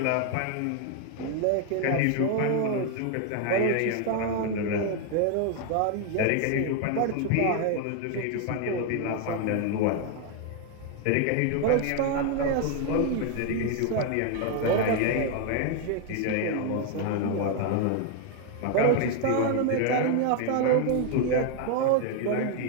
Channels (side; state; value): both; different; correlation 0.01